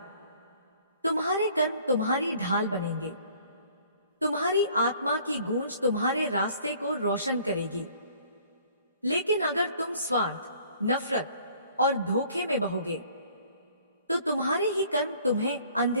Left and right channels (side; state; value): both; inverted; correlation -0.56